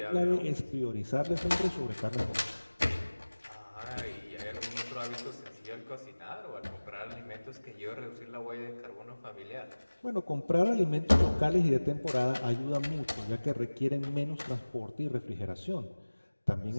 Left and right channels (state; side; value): inverted; both; correlation -1.00